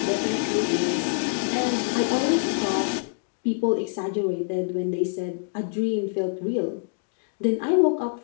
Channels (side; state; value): right; silent; digital silence